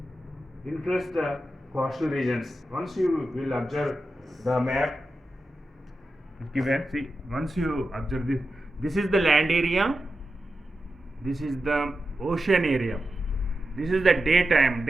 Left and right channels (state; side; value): normal; both; correlation 0.91